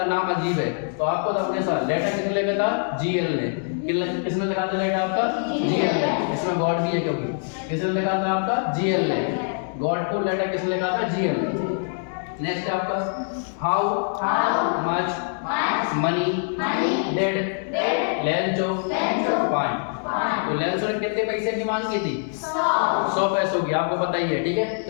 नाम अजीब है, तो आपको तो अपने साथ लेटर किसने लिखा था? GL ने। किसने लिखा था लेटर आपका? GL ने। इसमें गॉड भी है, क्योंकि किसने लिखा था आपका? GL ने। गॉड को लेटर किसने लिखा था? GL ने। नेक्स्ट आपका, how much money did Lencho find. तो लेंचो ने कितने पैसे की मांग की थी? 100 पैसों की, आपको पता ही है, ठीक है।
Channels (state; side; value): silent; right; digital silence